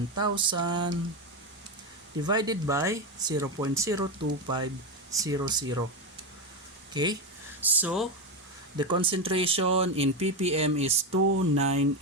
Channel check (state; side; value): normal; both; correlation 0.13